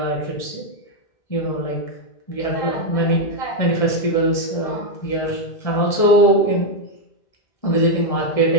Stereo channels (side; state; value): right; late; 1.6 ms